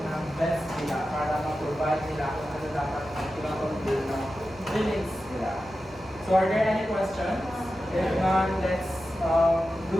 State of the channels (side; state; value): both; normal; correlation 0.92